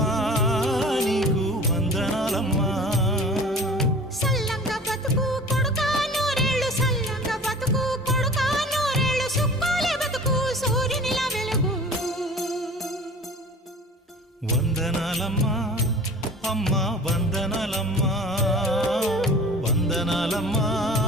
నీకు వందనాలమ్మా సల్లంగా బతుకు కొడుకా నూరేళ్ళు సల్లంగా బతుకు కొడుకా నూరేళ్ళు సుక్కోలే బతుకు సూర్యునిలా వెలుగు వందనాలమ్మా అమ్మా వందనాలమ్మా వందనాలమ్మా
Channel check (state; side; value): normal; both; correlation 0.43